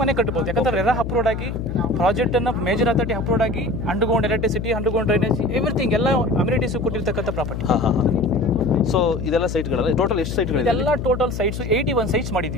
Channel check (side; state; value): left; noise; hum, 5 dB below the sound